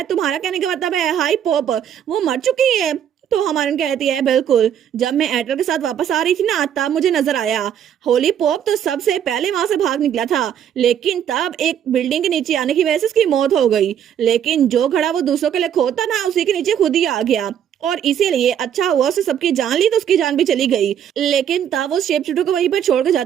तुम्हारा कहने का मतलब है हाई पॉप वो मर चुकी है? तो हमारन कहती है बिल्कुल, जब मैं एडर के साथ वापस आ रही थी ना तब मुझे नजर आया। होली पॉप तो सबसे पहले वहां से भाग निकला था, लेकिन तब एक बिल्डिंग के नीचे आने की वजह से उसकी मौत हो गई। लेकिन जो घड़ा वो दूसरों के लिए खोता ना उसी के नीचे खुद ही आ गया और इसीलिए अच्छा हुआ उसने सबकी जान ली तो उसकी जान भी चली गई। लेकिन तब वो शेप शिफ्टर को वहीं पर छोड़कर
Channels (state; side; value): quieter; left; 9.4 dB